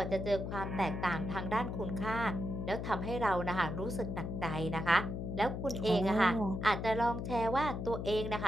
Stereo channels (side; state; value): left; noise; hum, 4 dB below the sound